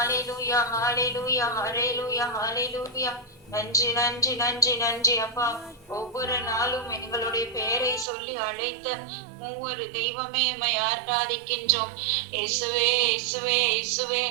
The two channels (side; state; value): left; drops out; at 8.1 s